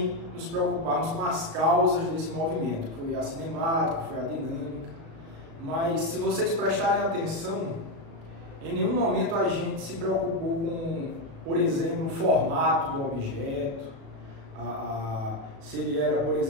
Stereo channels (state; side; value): late; left; 36 ms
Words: nos preocuparmos com as causas desse movimento, que foi a cinemática, foi a dinâmica. Mas se vocês prestarem atenção, em nenhum momento a gente se preocupou com, por exemplo, o formato do objeto, se ele era, por